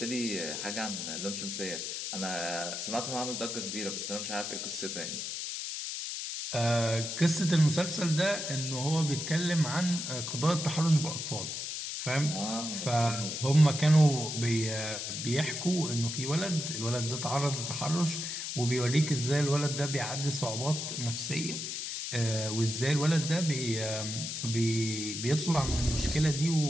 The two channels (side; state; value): left; noise; hiss, 4 dB below the sound